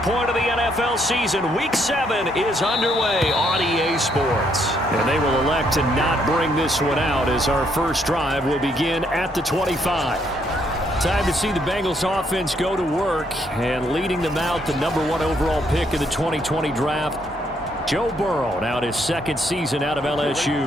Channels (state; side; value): normal; both; correlation 0.72